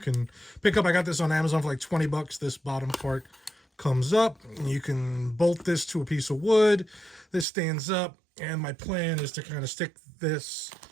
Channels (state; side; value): drops out; left; at 7.5 s